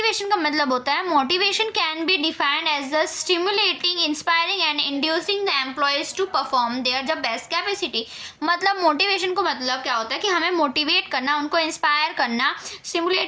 का मतलब होता है, motivation can be defined as the stimulating, inspiring and inducing the employees to perform their the best capacity. मतलब मोटिवेशन को मतलब क्या होता है कि हमें मोटिवेट करना, उनको इंस्पायर करना,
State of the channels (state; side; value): identical; both; correlation 1.00